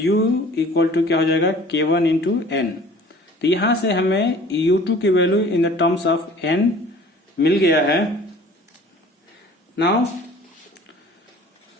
इक्वल टू क्या हो जाएगा, k1 इंटू एन. तो यहां से हमें u2 की वैल्यू in the terms of n मिल गया है. नाउ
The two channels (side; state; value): both; normal; correlation 0.48